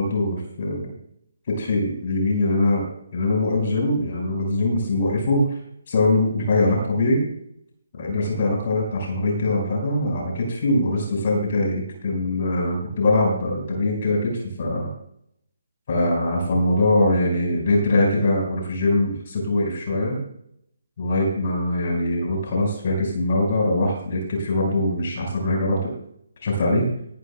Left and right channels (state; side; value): inverted; both; correlation -0.74